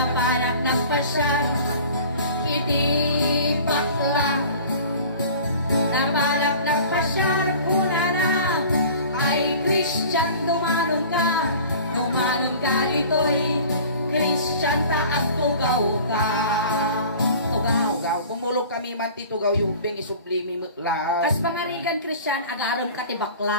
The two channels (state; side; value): inverted; both; correlation -0.43